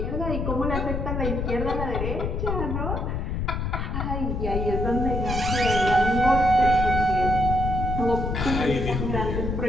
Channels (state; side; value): noise; left; rumble, 2 dB below the sound